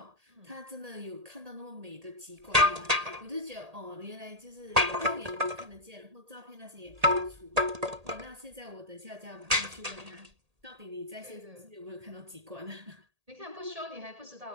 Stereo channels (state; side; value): late; left; 1.8 ms